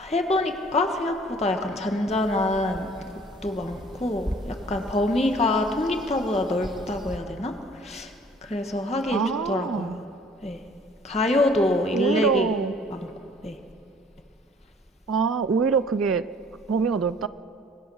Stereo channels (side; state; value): both; normal; correlation 0.54